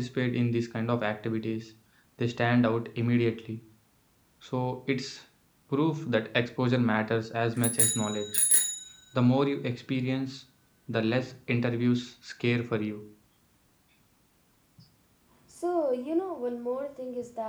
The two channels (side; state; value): both; identical; correlation 1.00